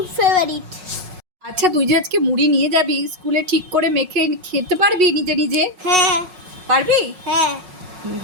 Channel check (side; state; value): left; late; 5.4 ms